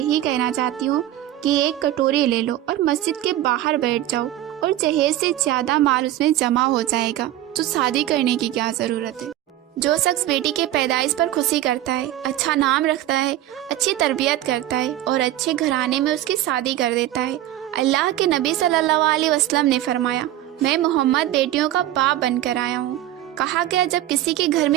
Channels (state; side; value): quieter; left; 13.7 dB